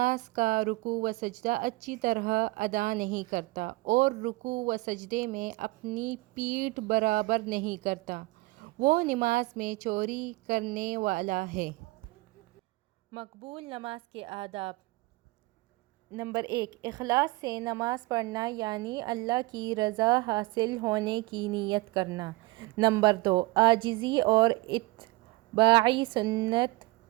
کا رکوع و سجدہ اچھی طرح ادا نہیں کرتا اور رکوع و سجدے میں اپنی پیٹھ برابر نہیں کرتا، وہ نماز میں چوری کرنے والا ہے۔ مقبول نماز کے آداب۔ نمبر 1، اخلاص سے نماز پڑھنا، یعنی اللہ کی رضا حاصل ہونے کی نیت کرنا۔ نمبر 2، عاجزی اور اتباع سنت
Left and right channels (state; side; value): quieter; left; 21.5 dB